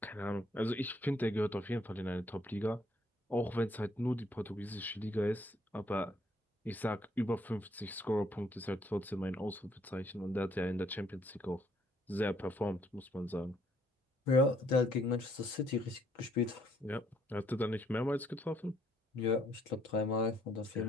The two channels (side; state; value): both; normal; correlation 0.68